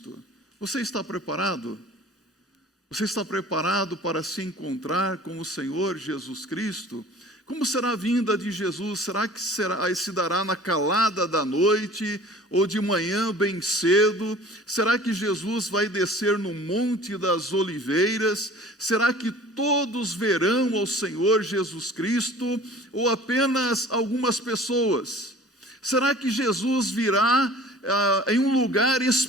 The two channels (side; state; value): both; normal; correlation 0.46